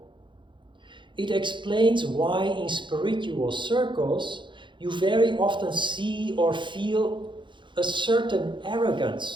It explains why in spiritual circles you very often see or feel a certain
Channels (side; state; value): left; late; 0.23 ms